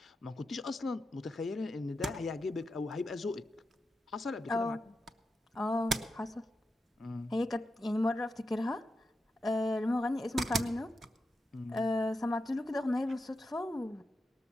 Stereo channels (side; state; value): both; normal; correlation 0.88